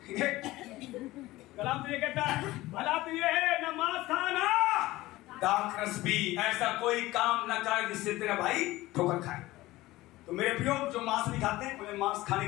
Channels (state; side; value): quieter; right; 18.1 dB